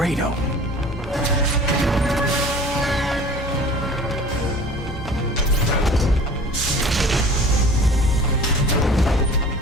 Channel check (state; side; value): normal; both; correlation 0.44